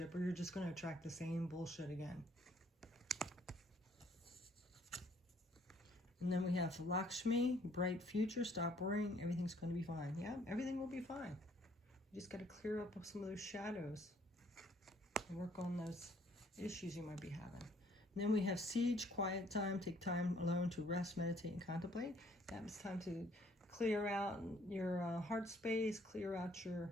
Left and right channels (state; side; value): normal; both; correlation 0.63